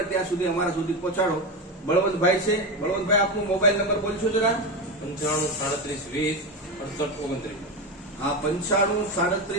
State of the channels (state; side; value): normal; both; correlation 0.17